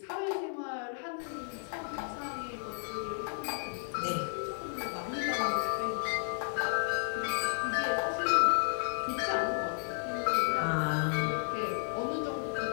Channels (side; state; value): right; silent; 56 dB below the other